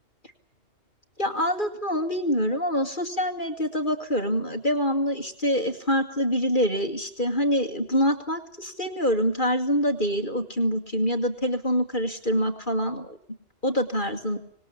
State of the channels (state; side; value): late; right; 2.4 ms